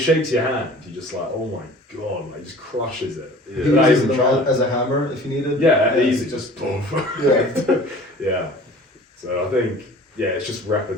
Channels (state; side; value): normal; both; correlation 0.45